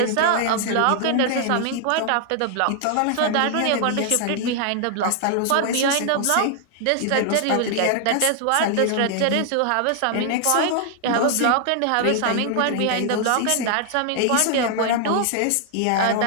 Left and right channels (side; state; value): both; different; correlation 0.00